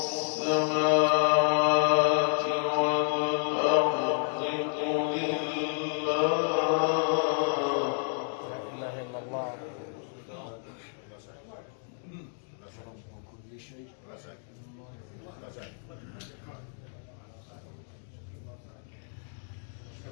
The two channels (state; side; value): silent; right; 56 dB below the other